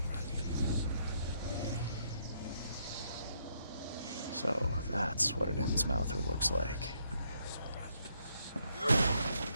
So, that's what an Innsmouther looks like.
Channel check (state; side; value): inverted; both; correlation -0.73